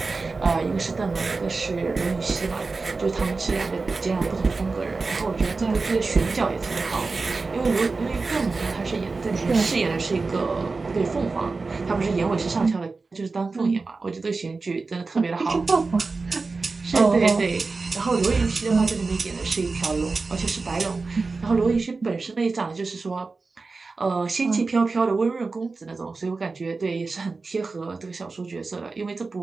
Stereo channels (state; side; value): quieter; left; 4.0 dB